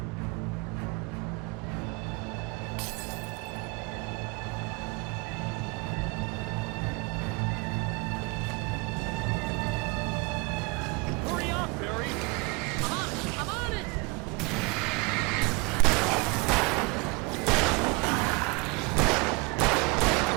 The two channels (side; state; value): left; quieter; 28.5 dB